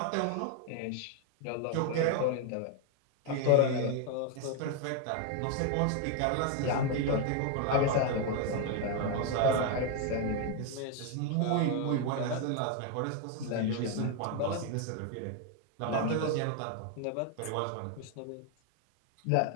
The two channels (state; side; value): different; both; correlation 0.01